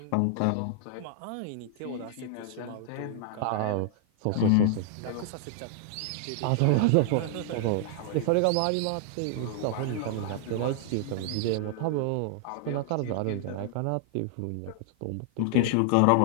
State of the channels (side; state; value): both; different; correlation 0.00